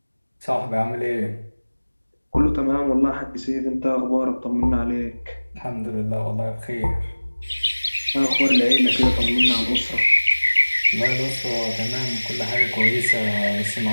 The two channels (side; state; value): both; inverted; correlation -1.00